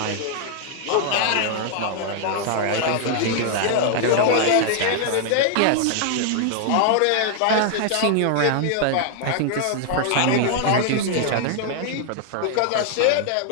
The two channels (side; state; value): both; different; correlation 0.00